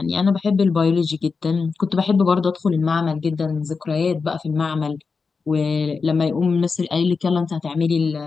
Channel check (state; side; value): quieter; right; 4.8 dB